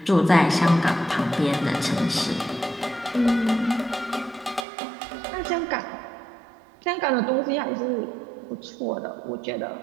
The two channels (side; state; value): left; drops out; at 4.7 s